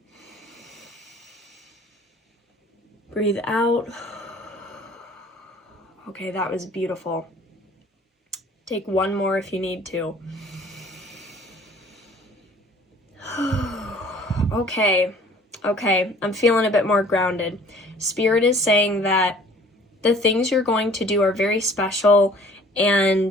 Breathe out. Okay, that was beautiful. Take one more if you need to. Okay, I'm feeling a bit more grounded. Spirit is saying that the things you're going to do are very special,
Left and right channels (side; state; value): both; normal; correlation 0.52